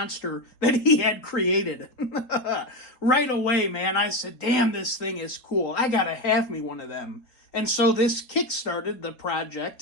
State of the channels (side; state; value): right; late; 3.9 ms